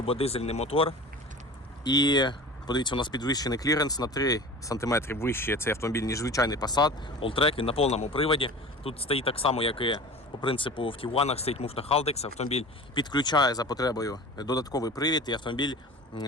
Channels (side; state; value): both; normal; correlation 0.37